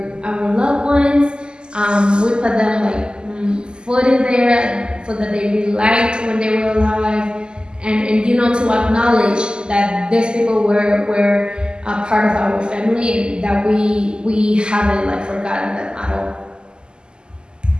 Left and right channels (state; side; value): late; left; 0.048 ms